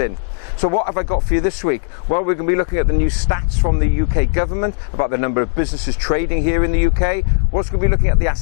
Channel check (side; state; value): right; silent; 68 dB below the other